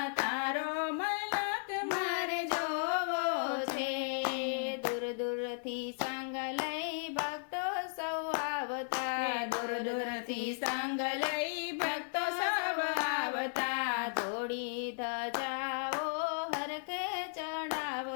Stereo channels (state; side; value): silent; right; digital silence